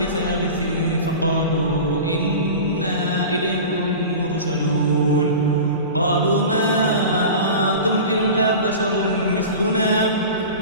فقالوا إنا إليكم مرسلون. قالوا ما أنتم إلا بشر مثلنا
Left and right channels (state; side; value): inverted; both; correlation -0.33